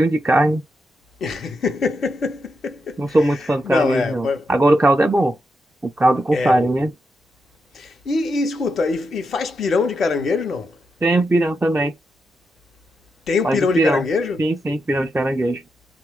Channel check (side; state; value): both; normal; correlation 0.85